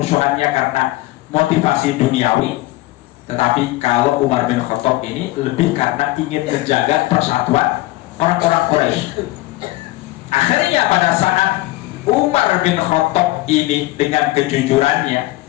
karena motivasi duniawi, tetapi kalau Umar bin Khattab ini lebih karena ingin menjaga persatuan orang-orang Quraisy. Akhirnya pada saat Umar bin Khattab ini dengan kejujurannya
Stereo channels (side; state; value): right; quieter; 19.0 dB